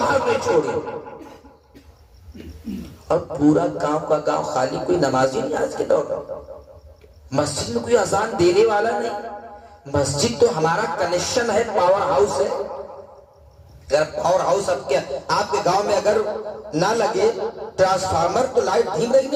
نہیں چھوڑی. اور پورا گاؤں کا گاؤں خالی, کوئی نمازی نہیں آج کے دور میں. مسجد میں کوئی اذان دینے والا نہیں. مسجد تو ہمارا کنیکشن ہے, پاور ہاؤس ہے. اگر پاور ہاؤس آپ کے گاؤں میں اگر نہ لگے ٹرانسفارمر تو لائٹ دھیم رہی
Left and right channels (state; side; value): identical; both; correlation 1.00